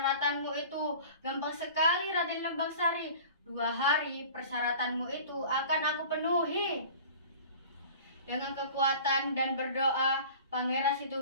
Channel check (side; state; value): both; inverted; correlation -0.42